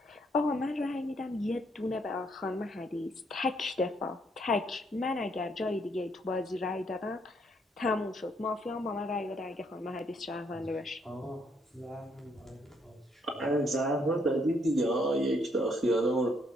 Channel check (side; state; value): both; normal; correlation 0.71